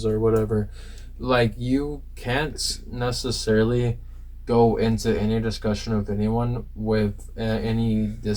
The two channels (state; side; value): identical; both; correlation 1.00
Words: or whatever. Like, you can't necessarily go into any discussion of anyone with any